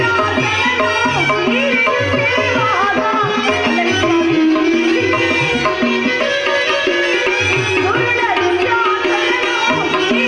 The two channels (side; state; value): both; identical; correlation 1.00